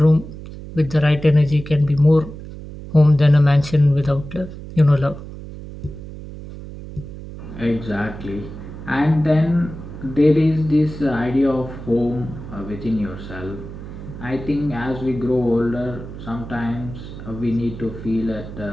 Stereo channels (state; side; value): noise; right; hum, 12 dB below the sound